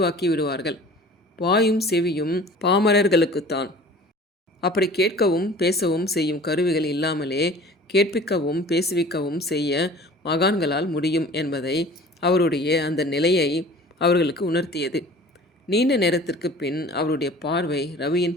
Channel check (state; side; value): normal; both; correlation 0.45